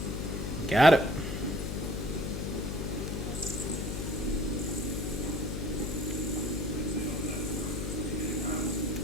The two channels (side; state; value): left; noise; hum, 3 dB below the sound